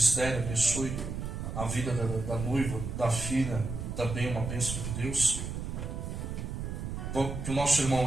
abençoe a vida da noiva, da filha, também uma bênção de Deus. Que o nosso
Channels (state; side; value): noise; right; rumble, 5 dB below the sound